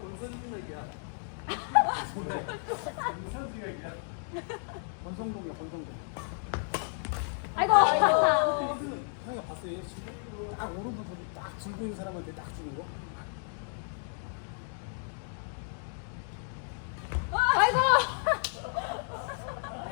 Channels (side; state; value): right; silent; 56 dB below the other